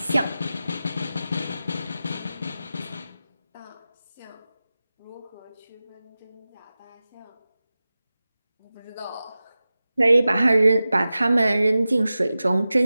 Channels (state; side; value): inverted; both; correlation -0.95